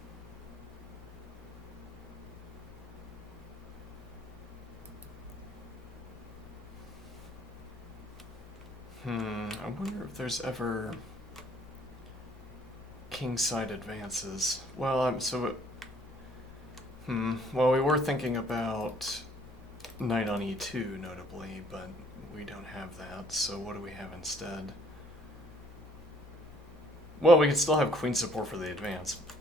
I wonder if there's ever kingside advances. Well, well, we were thinking about knight on e2, notably, but we don't have that, so what do we have instead? Well, we could still have queen support for the advance.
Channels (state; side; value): normal; both; correlation 0.61